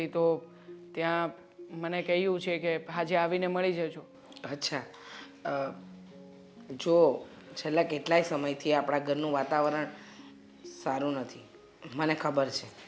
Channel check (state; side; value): identical; both; correlation 1.00